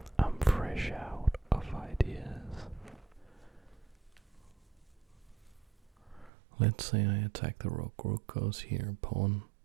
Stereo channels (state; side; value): drops out; left; at 6.3 s